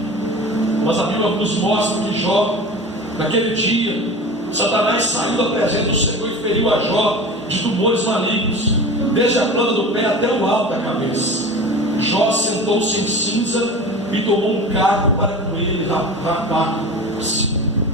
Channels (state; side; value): normal; both; correlation 0.34